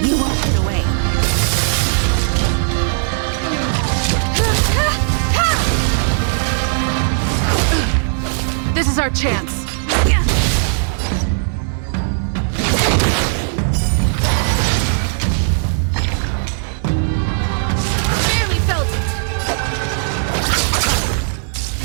You won't get away. This is our chance. Barely felt it.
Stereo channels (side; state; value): left; silent; 68 dB below the other